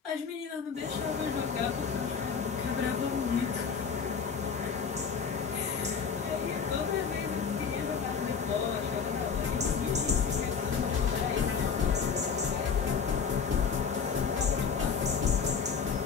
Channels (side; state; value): right; quieter; 6.2 dB